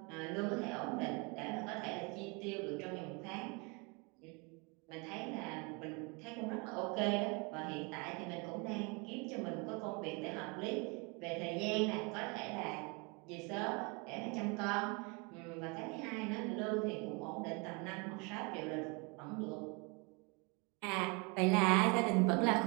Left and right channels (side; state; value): left; quieter; 30.4 dB